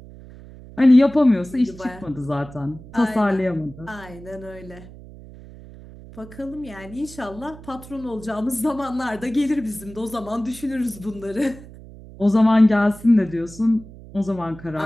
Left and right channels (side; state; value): right; noise; hum, 18 dB below the sound